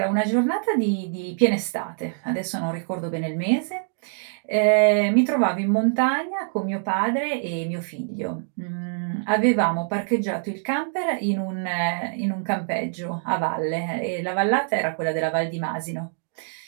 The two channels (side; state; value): left; silent; digital silence